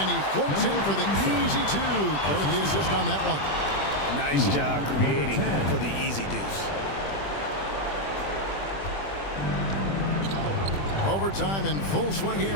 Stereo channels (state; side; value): late; right; 20 ms